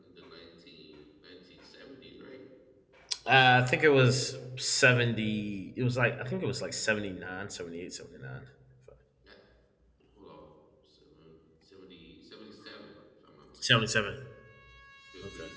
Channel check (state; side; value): identical; both; correlation 1.00